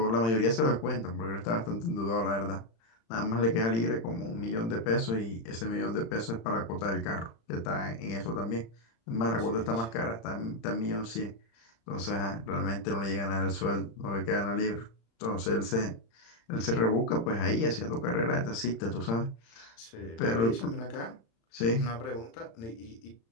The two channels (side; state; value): right; late; 35 ms